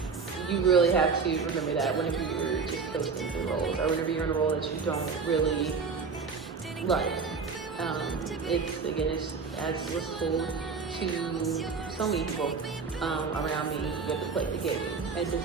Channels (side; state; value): left; quieter; 5.1 dB